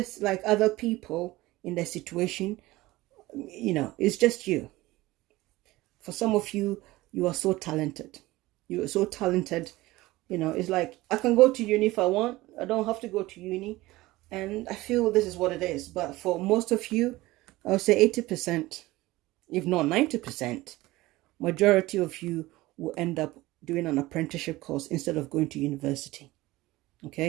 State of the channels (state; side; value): quieter; left; 18.8 dB